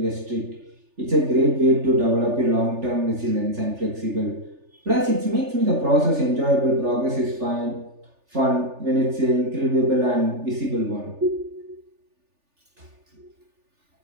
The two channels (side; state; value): left; late; 3.4 ms